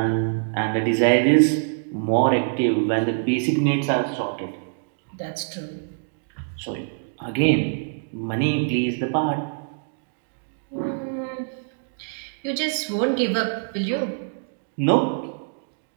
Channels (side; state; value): left; silent; digital silence